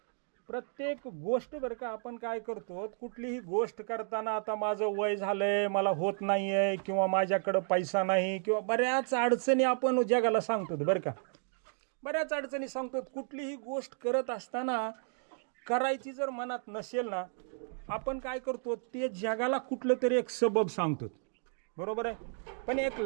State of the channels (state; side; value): silent; left; 56 dB below the other